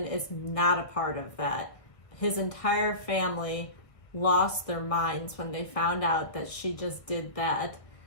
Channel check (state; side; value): late; right; 1.3 ms